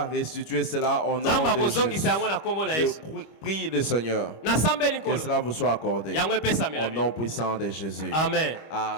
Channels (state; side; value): late; right; 25 ms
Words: restituer cela au nom de Jésus. Je prie le Seigneur que cela vous soit accordé au nom puissant de Jésus. Amen.